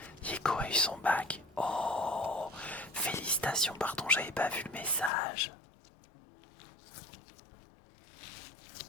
Yeko a eu son bac. Oh, félicitations, pardon, j'avais pas vu le message.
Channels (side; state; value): right; drops out; at 5.1 s